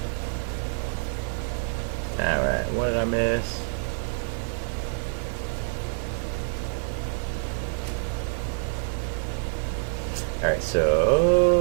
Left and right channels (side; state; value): left; silent; 60 dB below the other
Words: I miss? Alright,